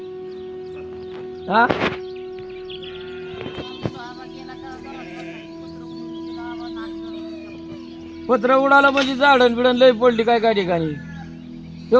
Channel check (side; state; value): both; identical; correlation 1.00